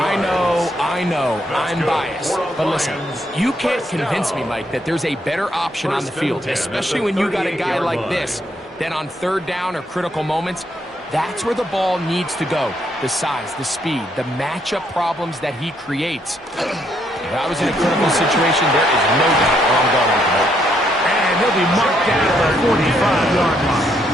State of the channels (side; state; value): both; normal; correlation 0.74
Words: I know, I'm biased. But listen, you can't convince me, Mike, that there's a better option on the field, especially when you got a guy like this, than on 3rd down or critical moments. That's where the ball needs to go. The size, the speed, the matchup problems that he creates. If I was in a critical situation, there is no doubt where I'm going with the ball. And he'll be marked down at the 45-yard line.